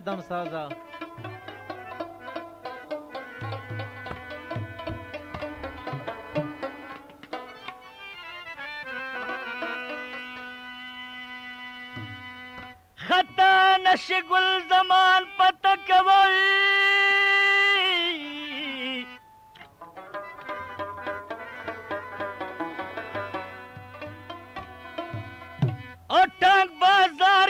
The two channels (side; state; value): both; identical; correlation 1.00